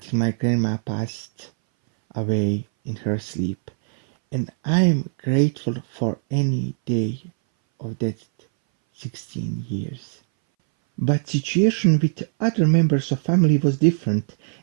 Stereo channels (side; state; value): left; silent; 62 dB below the other